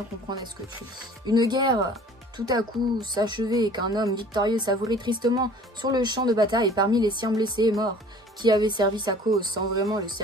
comprendre à ce que tu lis. Une guerre tout à coup s'achevait et qu'un homme victorieux savourait tristement sur le champ de bataille parmi les siens blessés et morts, qui avait servi sa cause sans vraiment le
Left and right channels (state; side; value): normal; both; correlation 0.49